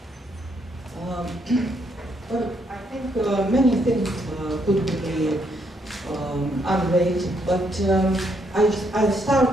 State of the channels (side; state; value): both; normal; correlation 0.74